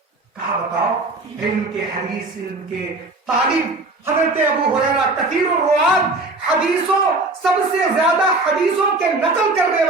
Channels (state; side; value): quieter; left; 3.1 dB